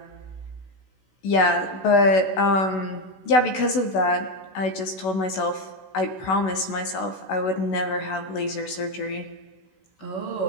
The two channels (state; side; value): late; right; 16 ms